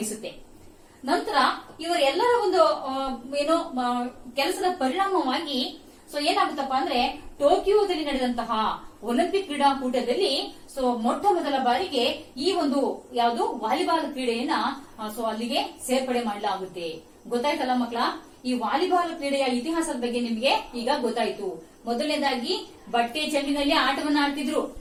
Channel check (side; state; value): both; identical; correlation 1.00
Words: ನಂತರ ಇವರೆಲ್ಲರ ಒಂದು ಕೆಲಸದ ಪರಿಣಾಮವಾಗಿ ಏನಾಗುತ್ತಪ್ಪ ಅಂದ್ರೆ, ಟೋಕಿಯೋದಲ್ಲಿ ನಡೆದಂತಹ ಒಲಿಂಪಿಕ್ ಕ್ರೀಡಾಕೂಟದಲ್ಲಿ ಮೊಟ್ಟ ಮೊದಲ ಬಾರಿಗೆ ಈ ಒಂದು ಯಾವುದು ವಾಲಿಬಾಲ್ ಕ್ರೀಡೆಯನ್ನ ಅಲ್ಲಿಗೆ ಸೇರ್ಪಡೆ ಮಾಡಲಾಗುತ್ತೆ. ಗೊತ್ತಾಯ್ತಲ್ಲ ಮಕ್ಕಳ, ಈ ವಾಲಿಬಾಲ್ ಕ್ರೀಡೆಯ ಇತಿಹಾಸದ ಬಗ್ಗೆ ನಿಮ್ಗೆ ಈಗ ಗೊತ್ತಾಯ್ತು. ಮೊದಲನೇದಾಗಿ ಬಟ್ಟೆ ಚೆಂಡಿನಲ್ಲಿ ಆಟವನ್ನ ಆಡ್ತಿದ್ರು.